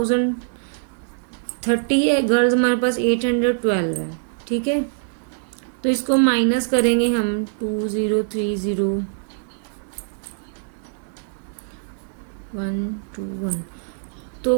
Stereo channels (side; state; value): left; silent; digital silence